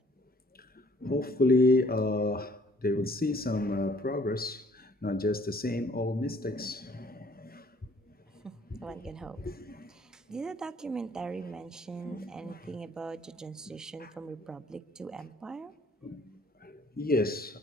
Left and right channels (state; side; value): normal; both; correlation 0.59